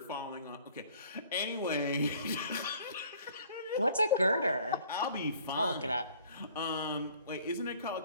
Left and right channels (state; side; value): inverted; both; correlation -0.55